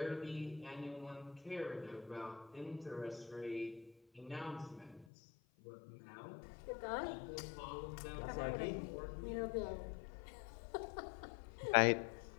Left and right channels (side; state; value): right; drops out; at 5.1 s